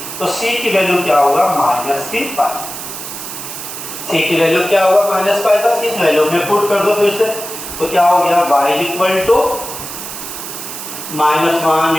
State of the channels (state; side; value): noise; right; hiss, 9 dB below the sound